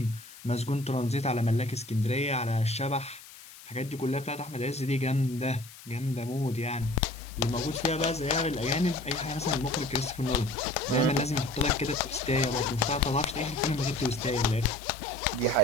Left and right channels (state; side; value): noise; left; hiss, 18 dB below the sound